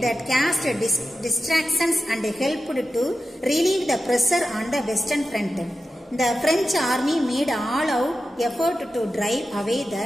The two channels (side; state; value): both; normal; correlation 0.92